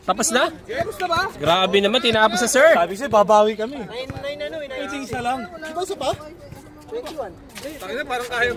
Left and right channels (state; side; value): identical; both; correlation 1.00